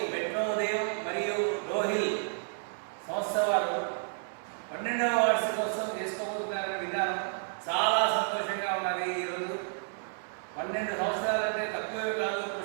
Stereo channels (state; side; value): silent; left; 57 dB below the other